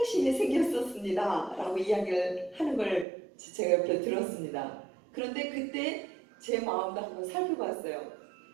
생겼었습니다 라고 이야기를 하는 걸 제가 옆에 들었습니다. 그런데 그때 제 마음도 한번 살펴봤어요.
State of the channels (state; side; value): drops out; left; at 3.1 s